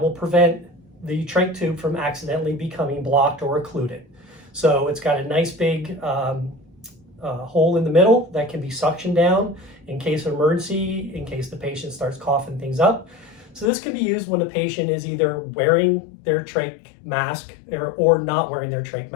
will prevent the trach tube from accidentally becoming blocked or occluded. So it's got a nice big hole in the middle that can be suctioned down in case of emergency, in case the patient starts coughing things up. So this can be used when the patient is either wearing their trach mask or not wearing their trach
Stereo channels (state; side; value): drops out; right; at 13.7 s